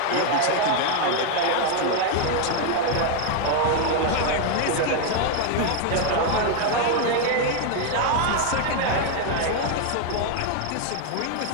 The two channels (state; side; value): different; both; correlation 0.00